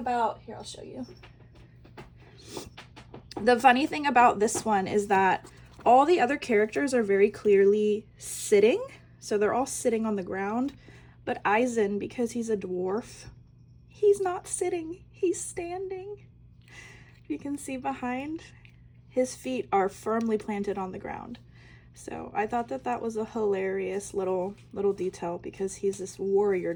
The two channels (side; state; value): both; identical; correlation 1.00